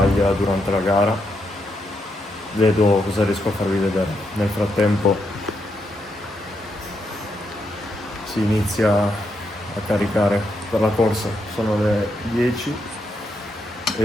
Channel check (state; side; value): normal; both; correlation 0.80